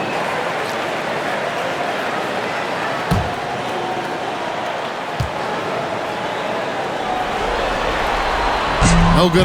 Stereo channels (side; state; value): both; identical; correlation 1.00